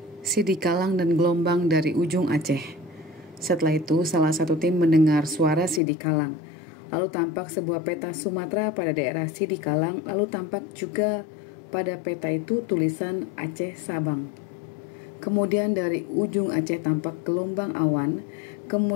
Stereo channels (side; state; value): right; drops out; at 5.8 s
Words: Sidi Kalang dan gelombang dari ujung Aceh. Setelah itu, salah satu tim mendengar suara Sidi Kalang. Lalu tampak sebuah peta Sumatera pada daerah Sidi Kalang, lalu tampak juga pada peta itu tulisan Aceh Sabang. Kemudian dari ujung Aceh tampak gelombang awan,